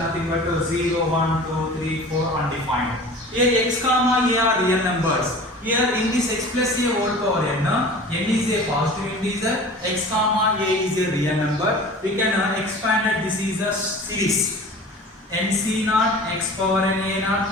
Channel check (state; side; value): normal; both; correlation 0.40